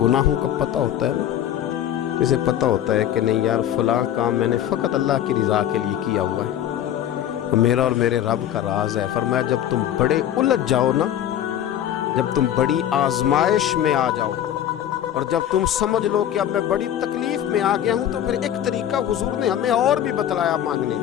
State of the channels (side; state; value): right; quieter; 11.0 dB